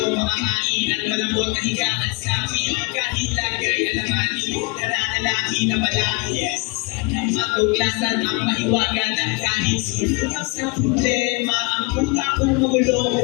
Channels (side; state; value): right; quieter; 27.7 dB